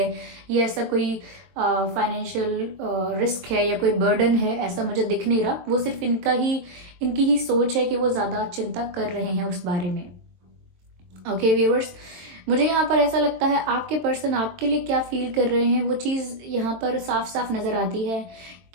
या ऐसा कोई फाइनेंशियल रिस्क है या कोई बर्डन है, ऐसा मुझे दिख नहीं रहा। वो सिर्फ इनकी ही सोच है कि वो ज़्यादा चिंता कर रहे हैं उस बारे में। ओके व्यूअर्स, मुझे यहाँ पर ऐसा लगता है आपके पर्सन आपके लिए क्या फील कर रहे हैं, वो चीज़ यहाँ पर साफ साफ नज़र आती है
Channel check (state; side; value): late; left; 22 ms